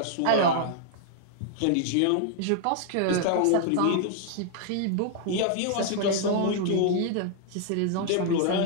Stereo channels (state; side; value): different; both; correlation -0.01